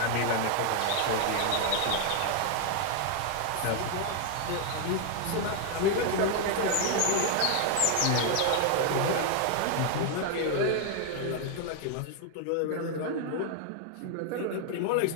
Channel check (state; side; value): different; both; correlation 0.00